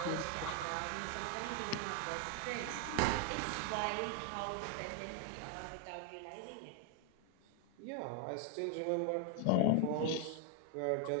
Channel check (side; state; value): both; different; correlation 0.01